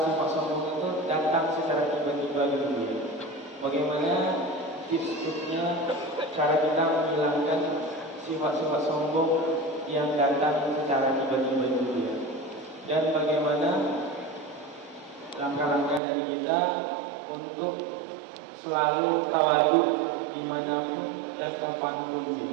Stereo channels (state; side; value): drops out; left; at 16.0 s